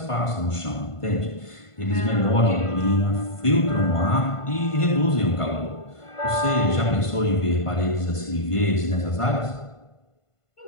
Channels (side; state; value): right; late; 1.5 ms